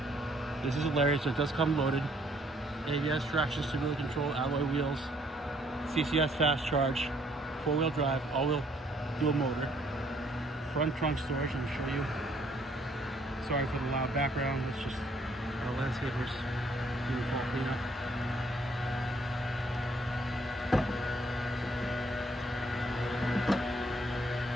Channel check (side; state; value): both; normal; correlation 0.66